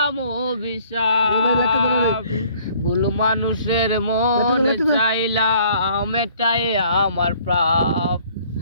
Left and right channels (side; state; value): both; inverted; correlation -0.58